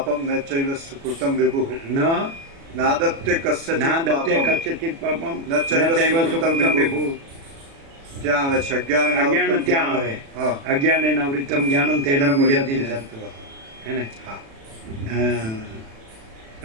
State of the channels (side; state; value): left; late; 36 ms